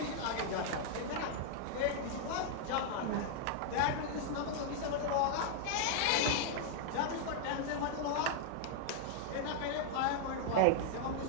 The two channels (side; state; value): both; different; correlation -0.01